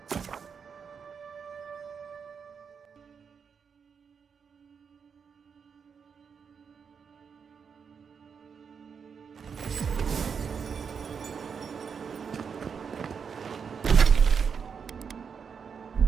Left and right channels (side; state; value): left; quieter; 6.4 dB